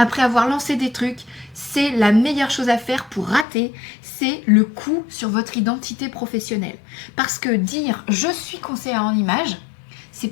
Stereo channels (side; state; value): right; drops out; at 3.5 s